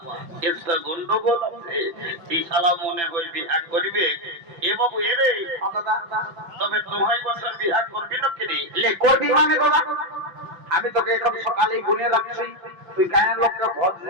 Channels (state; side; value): late; left; 5.9 ms